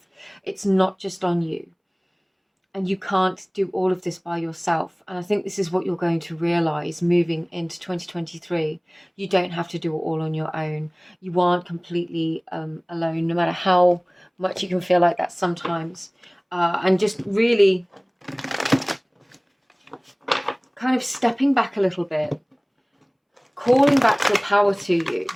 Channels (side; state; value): both; identical; correlation 1.00